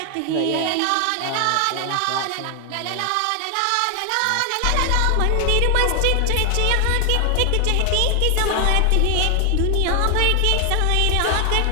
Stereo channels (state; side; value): different; both; correlation 0.00